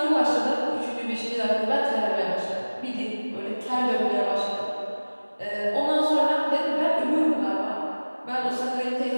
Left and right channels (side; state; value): both; inverted; correlation -1.00